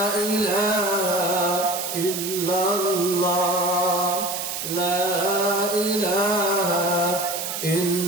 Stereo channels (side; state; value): right; noise; hiss, 5 dB below the sound